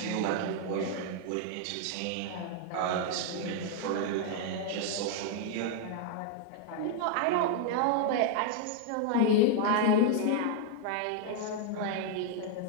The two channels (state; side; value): different; both; correlation 0.00